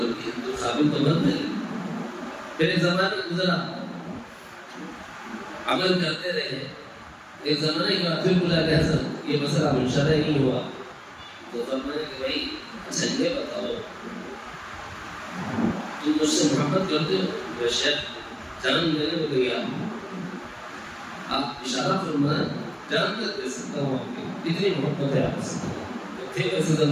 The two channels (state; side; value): identical; both; correlation 1.00